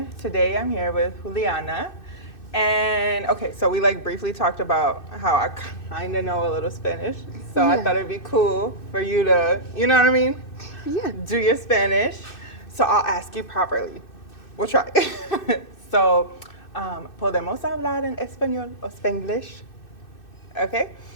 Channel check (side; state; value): right; late; 2.6 ms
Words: Today I'm here with Julianna. And okay, so we briefly talked about how I kind of know a little Spanish. So I thought it'd be cool for you to, you know what I mean? Yeah. Do your Spanish. So I'll ask you properly. We'll try. So, podemos hablar en español o spanglish? Okay.